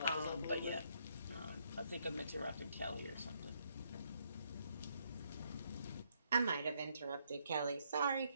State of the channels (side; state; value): both; inverted; correlation -0.73